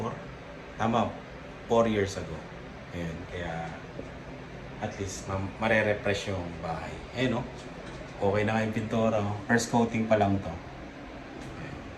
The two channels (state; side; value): identical; both; correlation 1.00